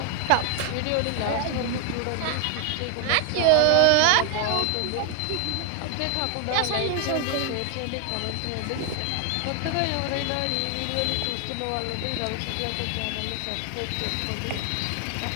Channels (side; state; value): both; different; correlation 0.00